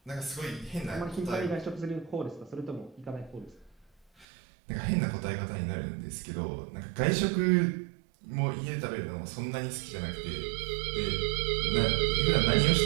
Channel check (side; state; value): left; drops out; at 4.2 s